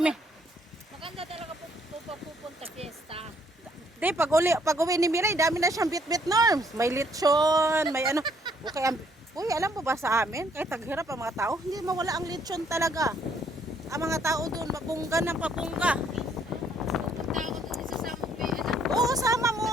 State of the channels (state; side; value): normal; both; correlation 0.66